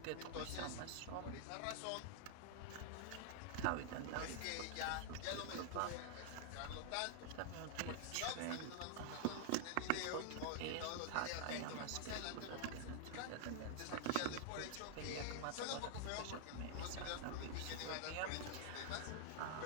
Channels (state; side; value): different; both; correlation 0.00